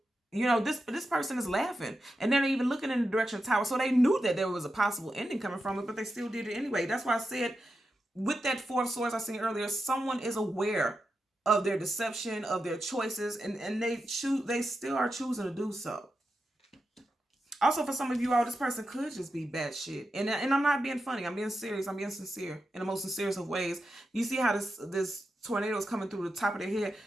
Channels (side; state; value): both; normal; correlation 0.88